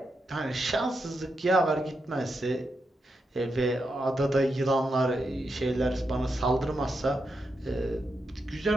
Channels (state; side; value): normal; both; correlation 0.85